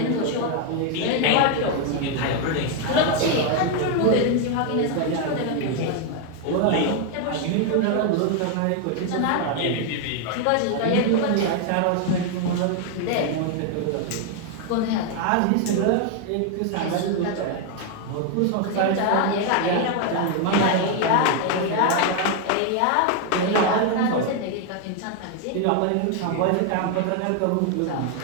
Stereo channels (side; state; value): both; different; correlation 0.01